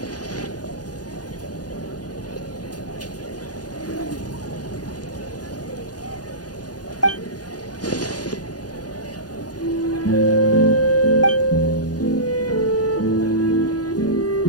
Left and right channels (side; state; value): right; late; 0.69 ms